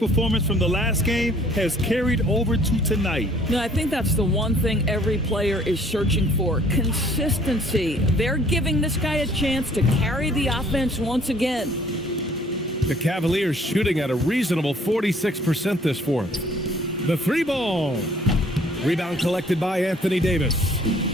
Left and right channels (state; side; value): normal; both; correlation 0.58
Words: from the last game has carried over to tonight. No, I think that's the one thing every player is searching for. Consistency. They're giving this guy a chance to carry the offense once again. The Cavaliers shooting at a reasonable 46% this fourth. The 3-ball. Rebound collected by Anthony Davis.